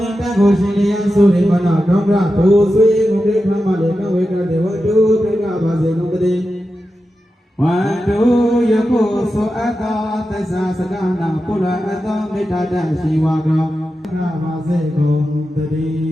င်တကိုရှိလျံသုရိမနာဒေါကရဒုဆွေငုတေခမလေးကဝေကတိဝတ္တုပိကပါစေကုန်တည်းဝန္တုယကုသောအတ္တသစ္စာစကနာပုရအတ္တမေတ္တာတရှိဝါကောပါစေကုန်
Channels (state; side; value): normal; both; correlation 0.91